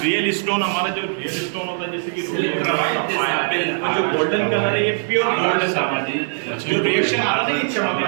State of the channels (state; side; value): silent; left; digital silence